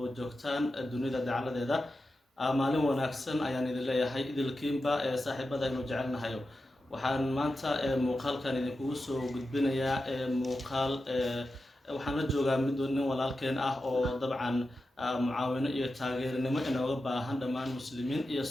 joogtaan dunida dacaladeeda maalin wanaagsan ayaan idin leeyahay idilkiinba ee saaxiibada aynu jecelnahayo waxaan maanta muuqaalkan idinkugu soo gudbinayaa muuqaal waxaan la joogaa mid nin walaalkeen ah oo dabcan mucaawino iyo taageernimo inooga baahan dhammaan muslimiin iyo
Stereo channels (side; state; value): both; normal; correlation 0.91